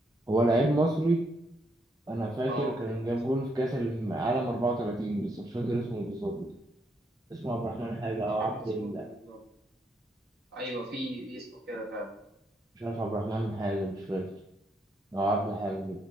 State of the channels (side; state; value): both; normal; correlation 0.75